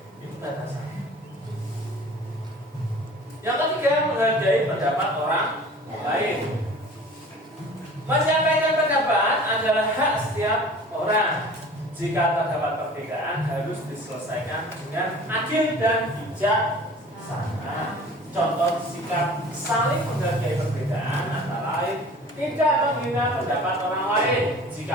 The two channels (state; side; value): normal; both; correlation 0.44